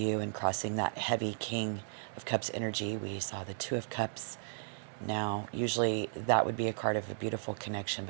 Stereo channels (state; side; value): silent; left; digital silence